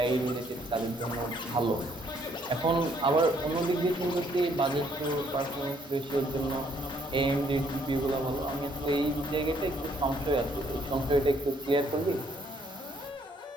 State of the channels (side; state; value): both; normal; correlation 0.66